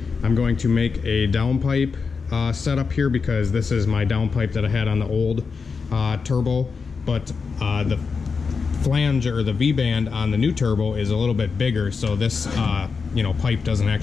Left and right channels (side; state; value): right; quieter; 5.1 dB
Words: I'm going to make a downpipe setup here, because this is my downpipe that I had on the old turbo. But the flange, or the V-band on the new turbo, is a little bit bigger, so this pipe doesn't